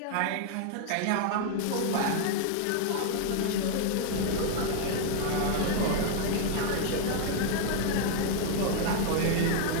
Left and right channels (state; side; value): different; both; correlation 0.00